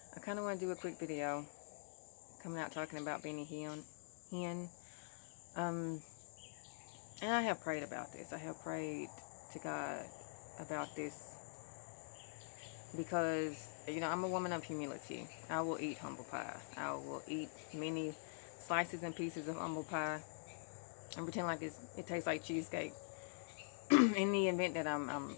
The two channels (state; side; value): silent; right; digital silence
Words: I kind of want to do a quick video coming out talking about Benny Hinn. Um, and I have prayed about this. I have prayed to God about this because, I'm a woman of humility. I will eat humble pie. I will eat many slices and pieces of humble pie and pretend like it tastes like cheesecake. In the event that I'm